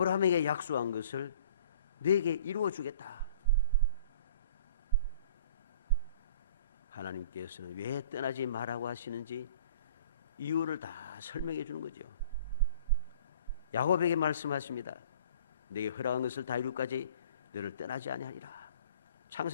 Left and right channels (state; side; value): inverted; both; correlation -0.50